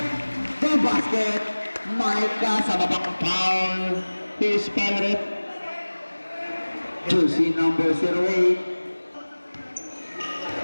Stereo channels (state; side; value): inverted; both; correlation -1.00